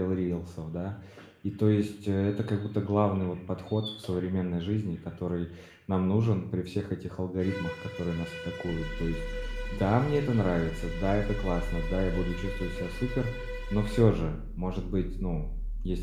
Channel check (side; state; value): both; identical; correlation 1.00